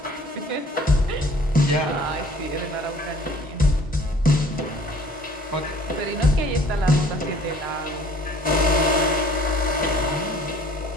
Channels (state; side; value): normal; both; correlation 0.53